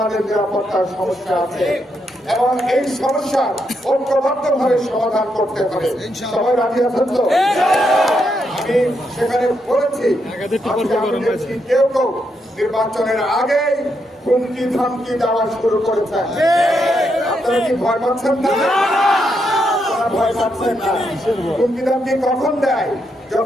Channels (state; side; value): normal; both; correlation 0.80